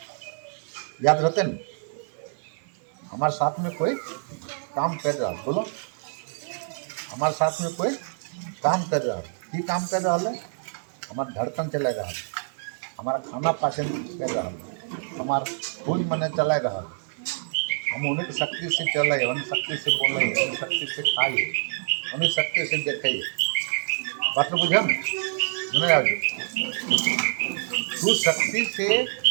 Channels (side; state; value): left; silent; 57 dB below the other